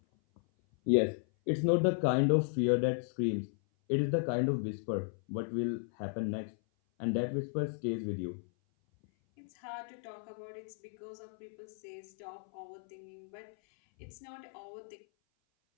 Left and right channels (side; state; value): right; silent; 54 dB below the other